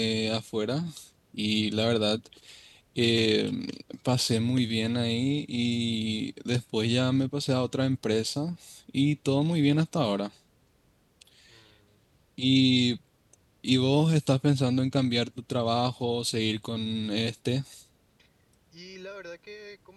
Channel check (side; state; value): both; identical; correlation 1.00